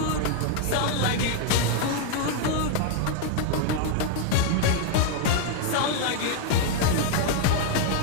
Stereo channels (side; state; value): both; different; correlation 0.00